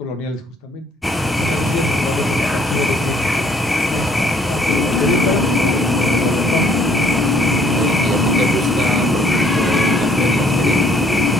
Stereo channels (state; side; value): normal; both; correlation 0.62